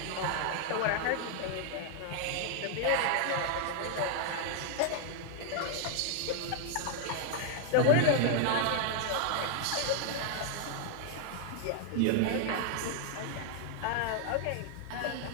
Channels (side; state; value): both; different; correlation 0.00